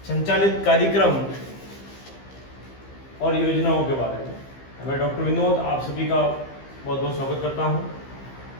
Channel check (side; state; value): right; late; 15 ms